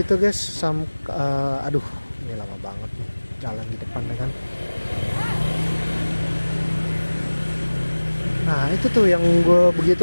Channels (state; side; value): inverted; both; correlation -1.00